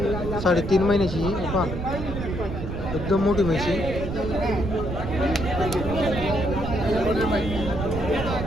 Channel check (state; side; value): noise; right; rumble, 5 dB below the sound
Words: 3.5 महिन्याची. हे पहा, एकदम मोठी म्हशी.